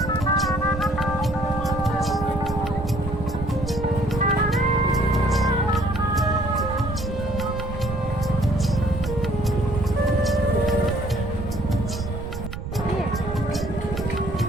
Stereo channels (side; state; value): right; noise; rumble, 7 dB below the sound